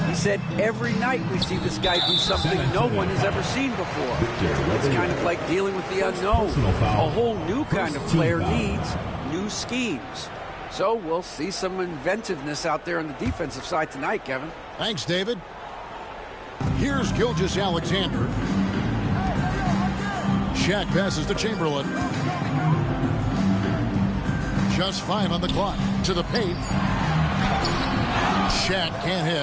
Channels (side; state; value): both; identical; correlation 1.00